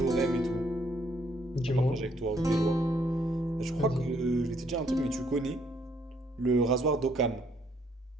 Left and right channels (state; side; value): normal; both; correlation 0.68